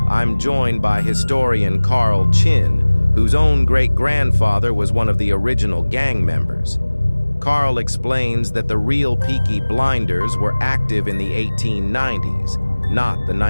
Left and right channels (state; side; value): inverted; both; correlation -1.00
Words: I'm joined by historian Carl Chinn, whose own great-grandfather was one of the original gang members. Carl explains that the real Peaky Blinders were active in the 1890s, not the